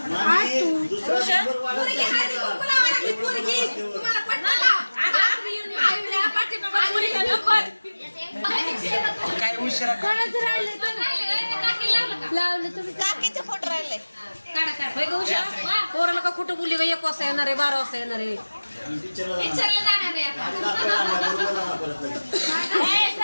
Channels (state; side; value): inverted; both; correlation -1.00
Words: काय उशिरा लावलं तुम्ही काकीचे फोटो राहिले पोराला का कुठं बोलली का 1 वाजता येणार आहे 12 वाजता येणार आहे